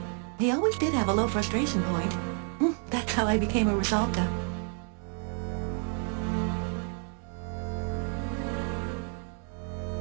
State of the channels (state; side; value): quieter; left; 39.9 dB